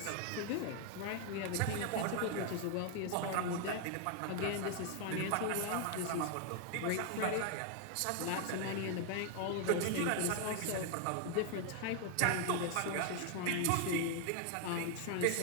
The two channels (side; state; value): both; different; correlation 0.00